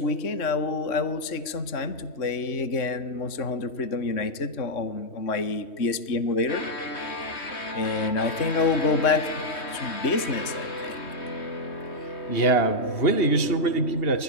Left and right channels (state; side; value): late; right; 3.1 ms